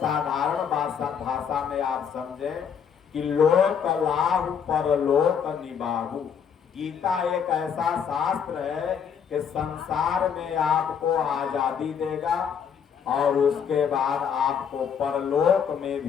भाषा में आप समझें कि लोक लाभ परलोक निबाहु। गीता एक ऐसा शास्त्र है कि संसार में आपको आजादी देगा और उसके बाद आपको परलोक में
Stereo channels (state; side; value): quieter; right; 7.4 dB